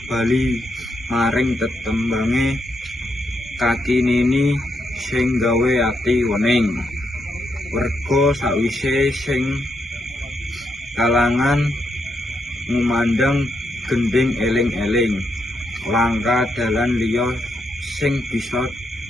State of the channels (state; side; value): normal; both; correlation 0.80